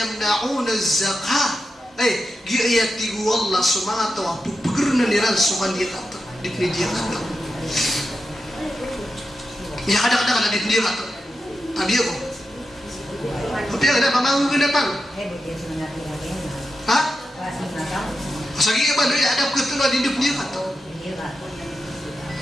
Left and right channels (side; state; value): both; normal; correlation 0.89